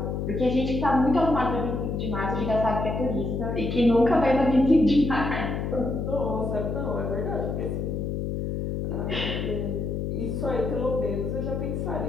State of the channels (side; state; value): left; noise; hum, 2 dB below the sound